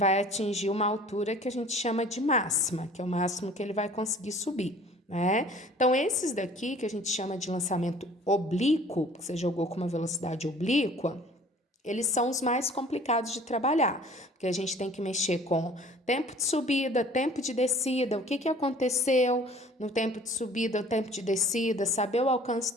atingir uma altura que a gente chama de máxima, que é o máximo que ele vai conseguir subir, né? Então, esses daqui que a gente chama de lançamento oblíquo, que você jogou com uma velocidade oblíqua, eles são os mais complicados de trabalhar, porque a gente tem que mexer com tempo de subida, tempo de descida, o que aconteceu no tempo de subida, o tempo de descida, saber o alcance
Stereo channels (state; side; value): normal; both; correlation 0.50